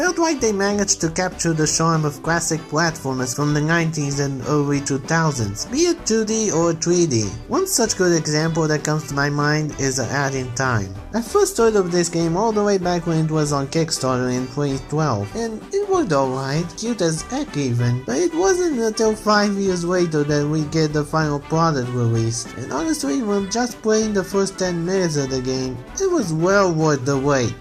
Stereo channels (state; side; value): identical; both; correlation 1.00